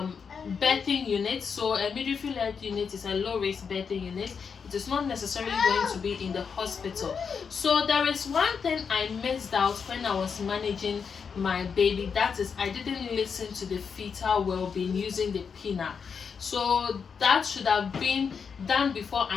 birthing unit. So a midwifery led unit is a low risk birthing unit. It is not necessarily going to be in the hospital. So there is one thing I missed out when I was managing my baby. That is, I didn't listen to the fetal well-being using the pinna. So that should have been done before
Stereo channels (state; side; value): quieter; right; 6.1 dB